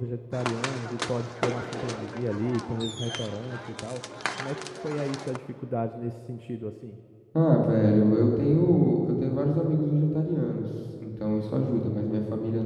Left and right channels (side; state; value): both; identical; correlation 1.00